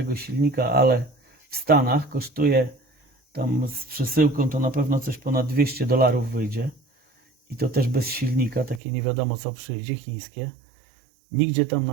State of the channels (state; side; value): drops out; left; at 8.8 s